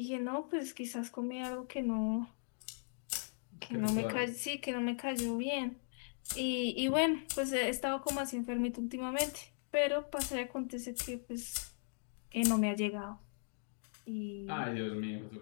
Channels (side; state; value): right; silent; digital silence